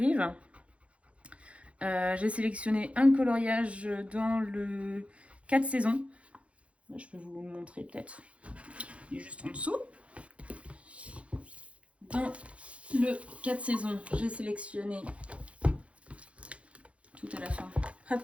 J'ai sélectionné un coloriage dans le 4 saisons. Là, je peux vous le montrer peut-être. Il est juste en dessous. Dans le 4 saisons, j'ai sélectionné tout à la fin.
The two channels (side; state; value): left; late; 0.062 ms